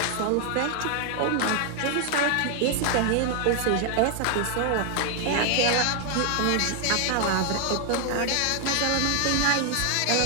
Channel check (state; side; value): different; both; correlation 0.00